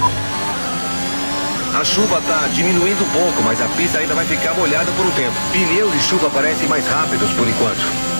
A chuva está diminuindo um pouco, mas a pista ainda vai ficar molhada por um tempo. Pneus de chuva parecem mais rápidos por enquanto.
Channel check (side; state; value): both; inverted; correlation -1.00